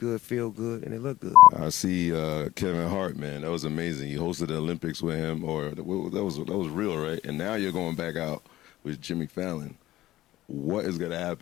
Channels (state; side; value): quieter; right; 15.6 dB